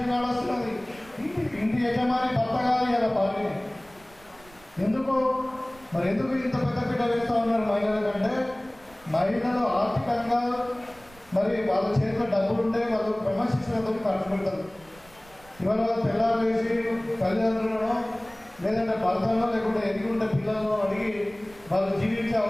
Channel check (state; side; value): noise; right; rumble, 25 dB below the sound